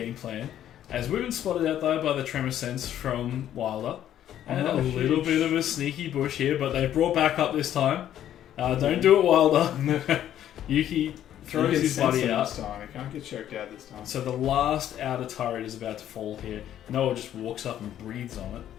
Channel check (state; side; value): quieter; right; 11.2 dB